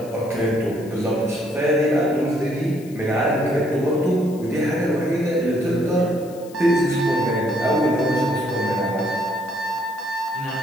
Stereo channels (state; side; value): noise; left; hiss, 23 dB below the sound